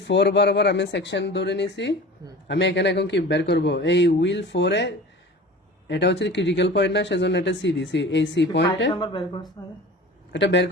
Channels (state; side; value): normal; both; correlation 0.38